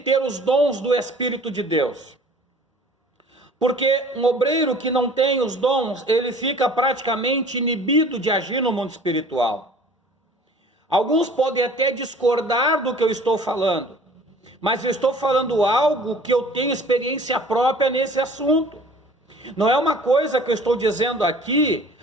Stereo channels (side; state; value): both; normal; correlation 0.48